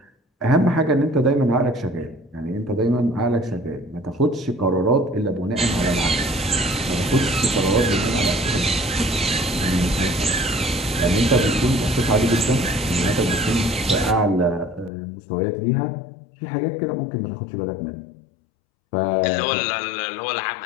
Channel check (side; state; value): right; drops out; at 14.9 s